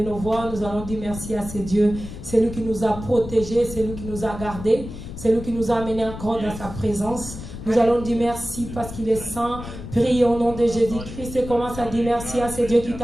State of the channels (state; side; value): noise; left; rumble, 11 dB below the sound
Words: nos voix, nous allons dire merci à ce Dieu. C'est lui qui nous a protégés, c'est lui qui nous a gardés, c'est lui qui nous a amenés encore dans sa présence. Nous allons dire merci parce qu'il est saint. Prie au nom de Jésus-Christ et commence à dire merci à ce Dieu qui